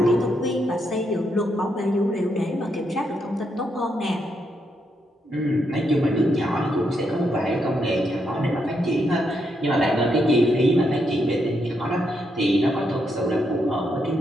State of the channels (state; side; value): normal; both; correlation 0.79